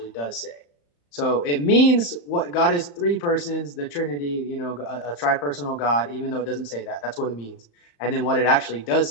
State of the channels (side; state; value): right; late; 35 ms